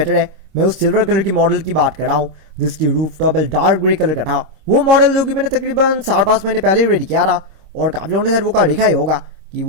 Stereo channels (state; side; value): late; left; 26 ms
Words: है। मैं उस सिल्वर कलर की मॉडल की बात कर रहा हूँ, जिसकी roof top dark grey colour का था। वो मॉडल जो कि मैंने तकरीबन 4-5 महीने पहले ही रेडी किया था और काफ़ी लोगों ने शायद वो कार देखा ही होगा कि